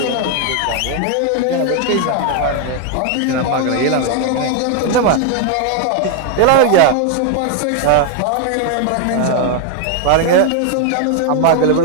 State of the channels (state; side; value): different; both; correlation 0.00